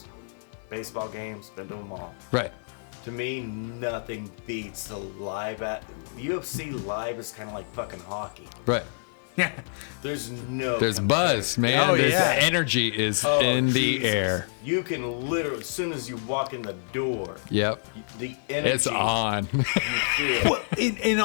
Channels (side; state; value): right; silent; 60 dB below the other